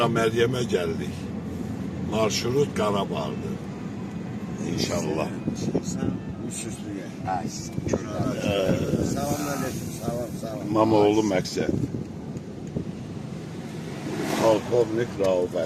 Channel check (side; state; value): both; identical; correlation 1.00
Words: Məryəmə gəldik. Marşrut Qarabağdır. İnşallah. Sen üstsüzlüğe. Selamünaleyküm. Sağ ol. İmamoğlu məqsəd. Polkovnik Rauf